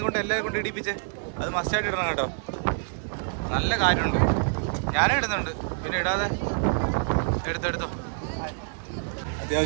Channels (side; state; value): left; silent; 60 dB below the other